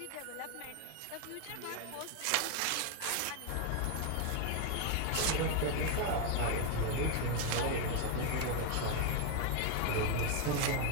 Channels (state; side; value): different; both; correlation 0.01